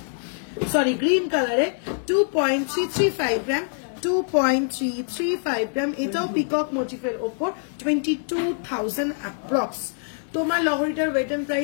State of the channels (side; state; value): right; silent; digital silence